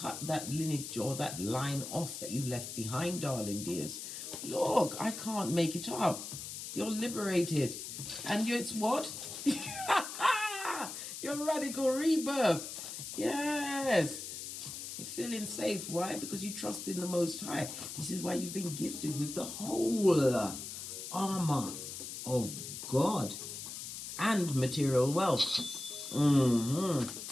that lineage or that line off that you left behind, darling dears. Look, I can't make it up. You're liberated. And it's what? Your radical rebirth. Yes. You're feeling safe. Why? Because you trust in the Most High. This is why you've been gifted with the whole armor of God and material wealth.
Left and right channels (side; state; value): left; noise; hiss, 8 dB below the sound